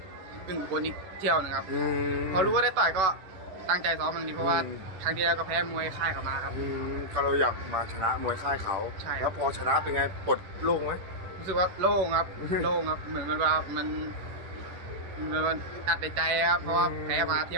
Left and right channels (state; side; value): late; left; 11 ms